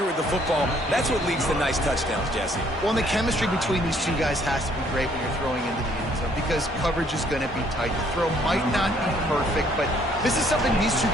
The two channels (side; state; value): both; normal; correlation 0.64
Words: with the football, that's what leads to nice touchdowns, Jesse. Well, and the chemistry between these two guys has to be great when you're throwing into the end zone because coverage is going to be tight. The throw might not be perfect, but this is something these two